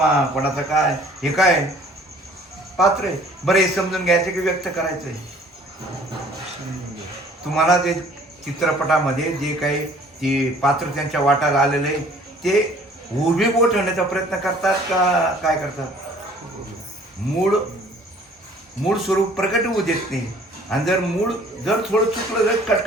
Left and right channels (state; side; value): normal; both; correlation 0.54